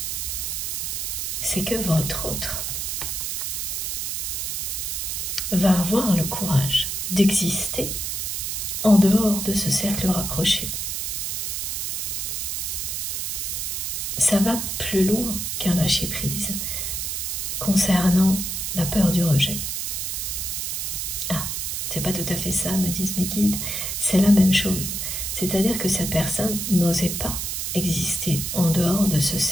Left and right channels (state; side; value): noise; right; hiss, 2 dB below the sound